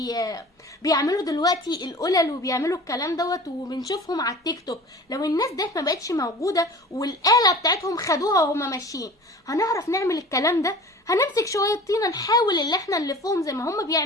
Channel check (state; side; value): normal; both; correlation 0.40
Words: بيعملوا دلوقتي القلل وبيعملوا الكلام دوت وبنشوفهم على التيك توك. لو الناس ديت ما بقتش موجوده والآلة بتاعتهم خدوها وهما ماشيين، هنعرف نعمل الكلام ده؟ هنمسك شويه طينه نحاول اللي احنا نلفهم زي ما هما